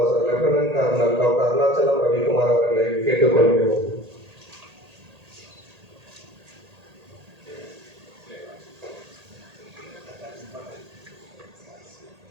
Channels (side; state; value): left; late; 1.8 ms